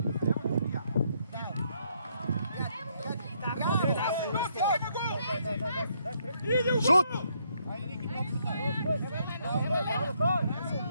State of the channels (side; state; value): both; inverted; correlation -0.73